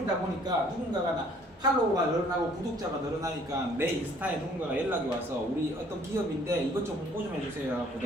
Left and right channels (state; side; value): normal; both; correlation 0.58